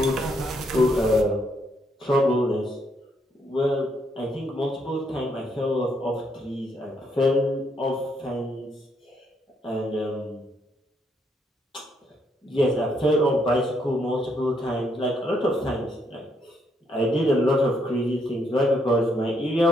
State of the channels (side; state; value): both; normal; correlation 0.74